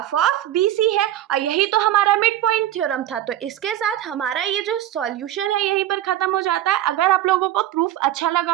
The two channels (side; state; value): left; quieter; 12.8 dB